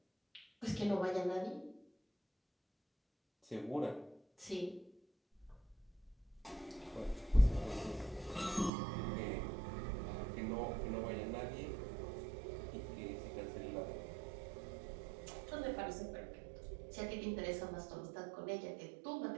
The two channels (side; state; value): left; drops out; at 8.7 s